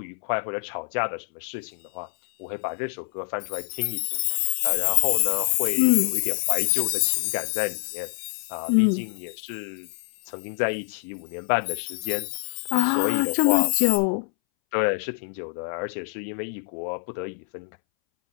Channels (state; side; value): silent; right; 61 dB below the other